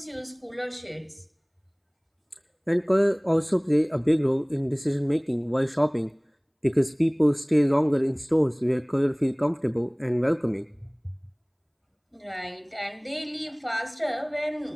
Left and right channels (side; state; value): both; identical; correlation 1.00